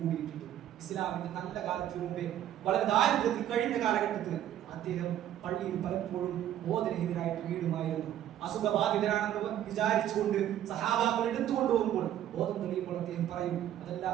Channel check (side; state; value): left; quieter; 11.5 dB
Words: കൂടിയിട്ടുണ്ട്. ഇസ്ലാമിന്റെ നല്ല കാലത്തിന് മുമ്പേ വളരെ ദാരിദ്ര്യത്തിൽ കഴിഞ്ഞ കാലഘട്ടത്തിൽ അദ്ദേഹം പള്ളിയിൽ പലപ്പോഴും ബോധരഹിതരായിട്ട് വീടുമായിരുന്നു. അസുഖബാധിതരാണെന്ന് വിചാരിച്ചുകൊണ്ട് സഹാബാക്കൾ എടുത്തുകൊണ്ട് പോകുമ്പോൾ ബോധം തെളിയുമ്പോൾ അദ്ദേഹം പറയും, അതല്ല,